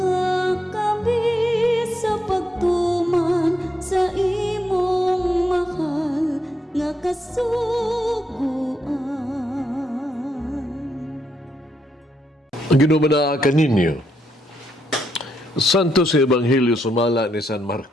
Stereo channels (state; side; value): normal; both; correlation 0.79